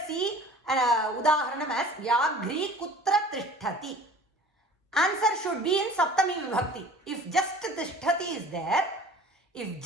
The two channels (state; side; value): normal; both; correlation 0.45